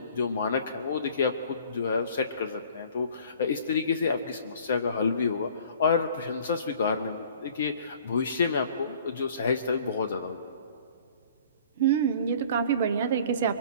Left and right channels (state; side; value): inverted; both; correlation -0.51